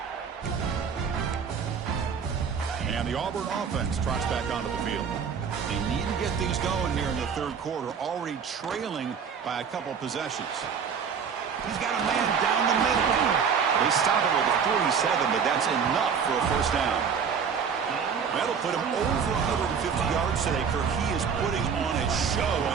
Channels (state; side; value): quieter; left; 6.6 dB